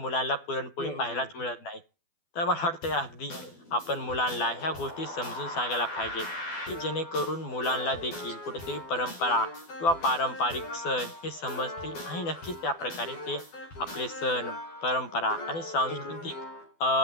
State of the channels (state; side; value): late; right; 12 ms